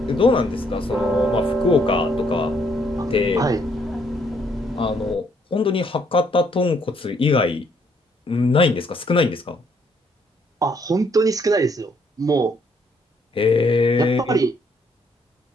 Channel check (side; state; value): both; normal; correlation 0.69